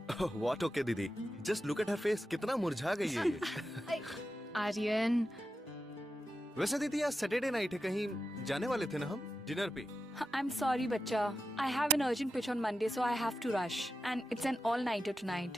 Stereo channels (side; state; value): both; normal; correlation 0.90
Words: What okay दीदी, just look at her face, कितना मुरझा गई है ये। आर्यन, वैसे दीदी आज सैटरडे नाइट है, कहीं जाने वाले थे ना हम डिनर पे? I'm sorry, बच्चा. I have an urgent pitch on Monday, so I have to rush. And it's an all-nighter tonight.